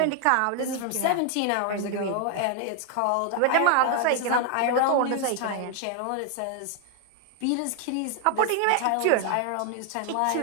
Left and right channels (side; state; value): both; different; correlation 0.00